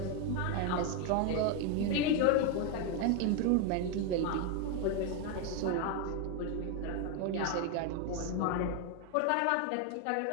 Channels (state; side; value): different; both; correlation 0.01